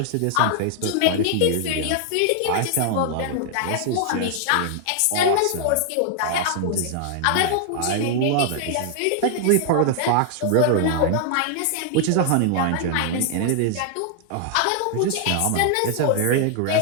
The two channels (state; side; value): different; both; correlation 0.00